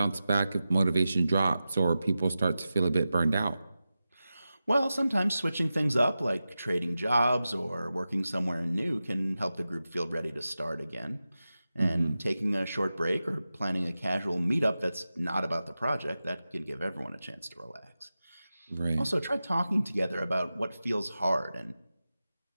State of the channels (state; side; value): inverted; both; correlation -0.93